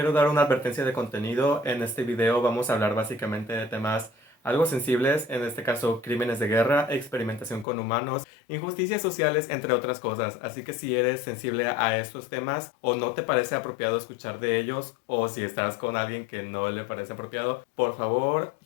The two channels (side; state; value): right; drops out; at 7.7 s